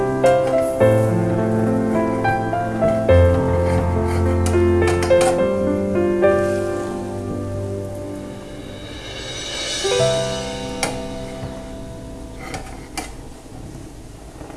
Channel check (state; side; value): identical; both; correlation 1.00